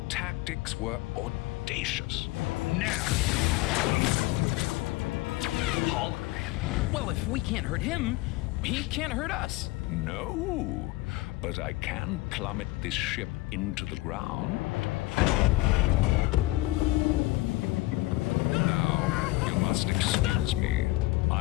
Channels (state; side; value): quieter; right; 19.6 dB